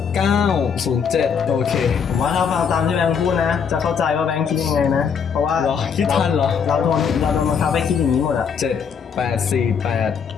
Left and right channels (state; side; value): quieter; right; 6.7 dB